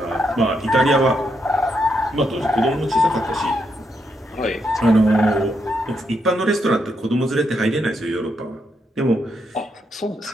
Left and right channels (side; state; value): both; normal; correlation 0.80